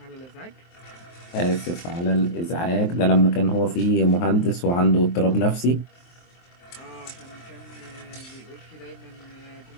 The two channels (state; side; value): late; right; 23 ms